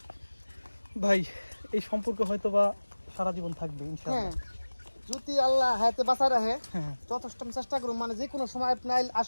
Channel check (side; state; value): both; inverted; correlation -1.00